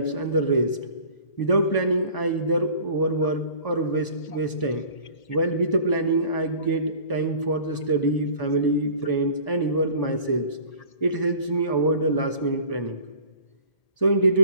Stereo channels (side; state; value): right; late; 1.0 ms